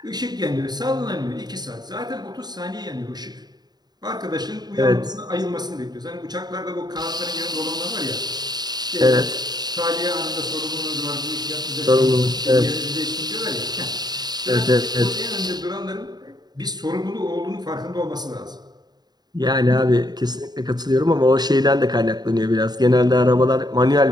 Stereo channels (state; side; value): late; left; 0.20 ms